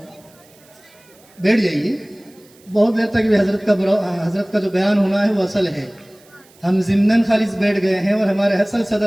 بیٹھ جائیے. بہت دیر تک بھی حضرت کا جو بیان ہونا ہے وہ اصل ہے. ہم ضمناً خالص بیٹھ گئے ہیں اور ہمارے اصل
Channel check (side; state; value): right; noise; hiss, 29 dB below the sound